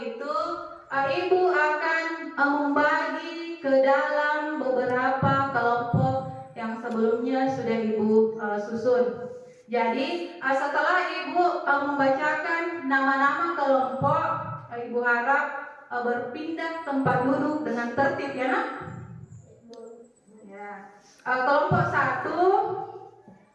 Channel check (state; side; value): identical; both; correlation 1.00